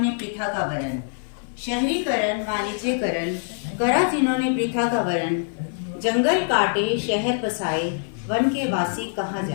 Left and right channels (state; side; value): silent; right; 56 dB below the other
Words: प्रथा का वरण, शहरीकरण वाणिज्यकरण करा जिन्होंने प्रथा का वरण। जंगल काटे शहर बसाए वन के वासी कहाँ